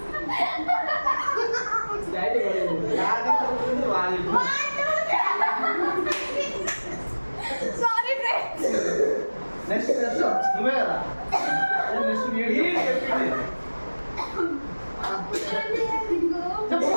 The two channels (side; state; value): both; inverted; correlation -1.00